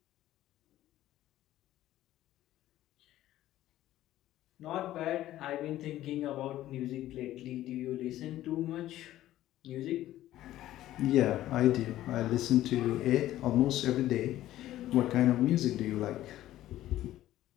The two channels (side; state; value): right; quieter; 14.1 dB